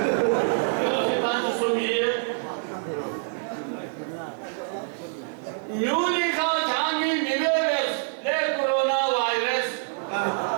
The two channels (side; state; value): left; silent; 61 dB below the other